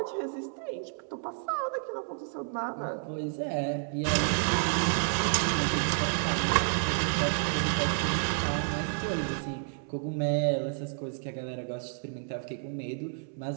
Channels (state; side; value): silent; left; 57 dB below the other